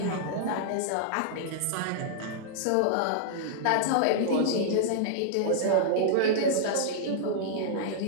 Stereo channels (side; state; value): both; different; correlation -0.01